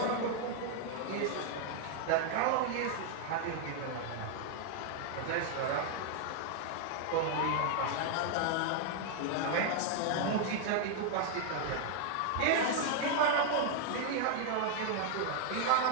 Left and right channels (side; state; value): both; different; correlation 0.00